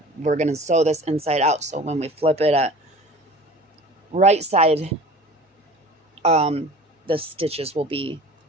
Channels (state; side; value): normal; both; correlation 0.42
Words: we're going to sew this inside out. So when we flip it at right side, the stitches will be